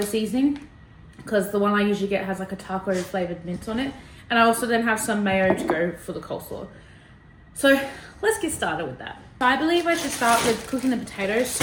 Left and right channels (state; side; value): identical; both; correlation 1.00